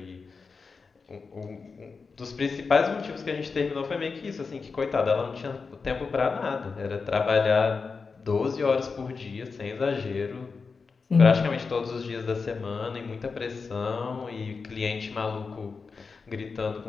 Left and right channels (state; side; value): quieter; right; 4.8 dB